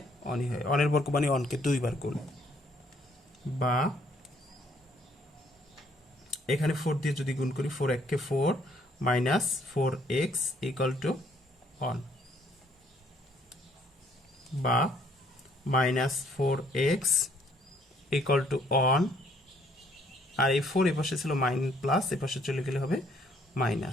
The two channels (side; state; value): both; normal; correlation 0.65